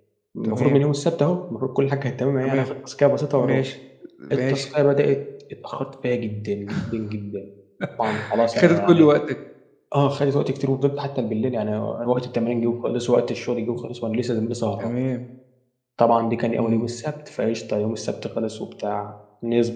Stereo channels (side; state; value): both; identical; correlation 1.00